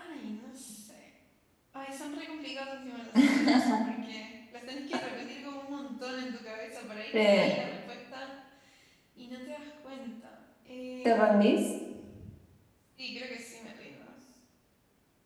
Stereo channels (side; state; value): both; identical; correlation 1.00